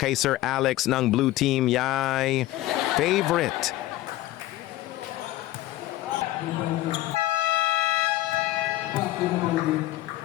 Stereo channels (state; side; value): quieter; right; 16.2 dB